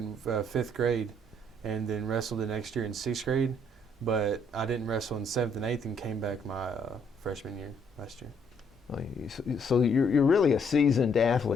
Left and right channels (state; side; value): normal; both; correlation 0.68